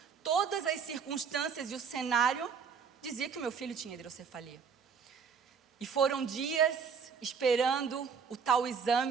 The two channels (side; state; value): left; quieter; 6.3 dB